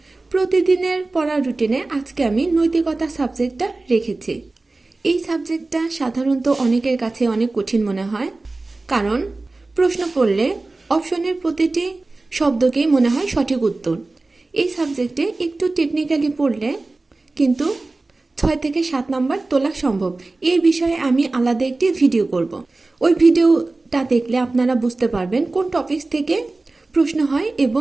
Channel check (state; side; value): quieter; left; 3.3 dB